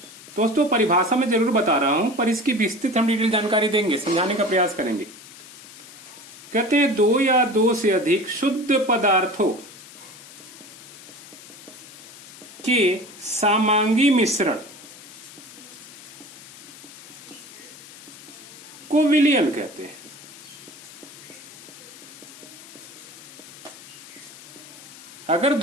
दोस्तों परिभाषा में जरूर बता रहा हूं, पर इसकी विस्तृत हम डिटेल जानकारी देंगे, समझाने का प्रयास करेंगे। कहते हैं दो या दो से अधिक शुद्ध पदार्थों के समांगी मिश्रण को विलयन कहते हैं। अगर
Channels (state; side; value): noise; left; hiss, 18 dB below the sound